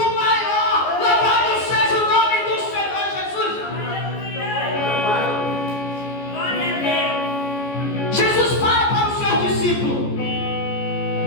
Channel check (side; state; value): right; late; 14 ms